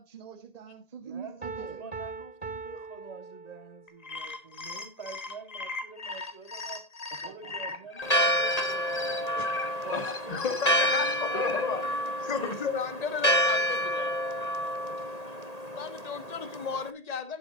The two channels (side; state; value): right; late; 1.8 ms